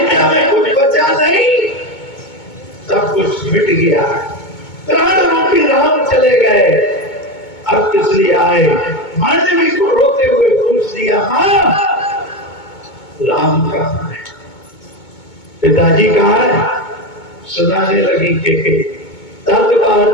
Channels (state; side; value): late; right; 2.2 ms